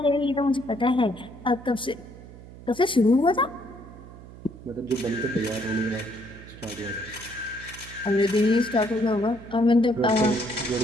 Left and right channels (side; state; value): right; noise; hum, 17 dB below the sound